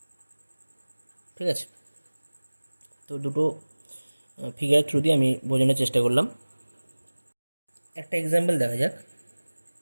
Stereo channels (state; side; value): inverted; both; correlation -1.00